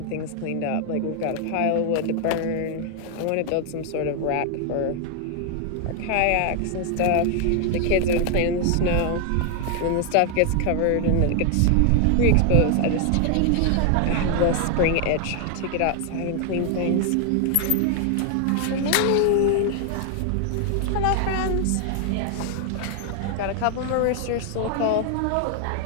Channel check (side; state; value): both; different; correlation 0.00